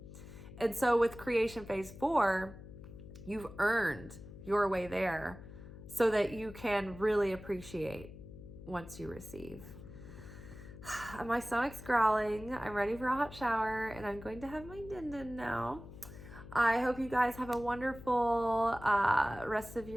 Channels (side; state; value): left; noise; hum, 15 dB below the sound